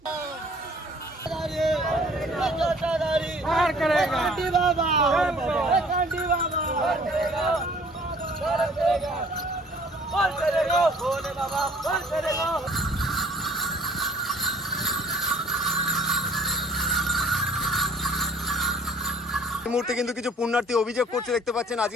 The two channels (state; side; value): normal; both; correlation 0.55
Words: এই মুহূর্তে কিন্তু কিছু পুণ্যার্থী অভিযোগ করছে, দেখতে পাচ্ছেন